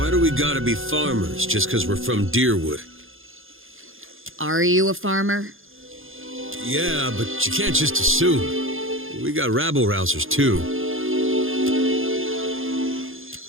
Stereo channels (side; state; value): left; late; 0.59 ms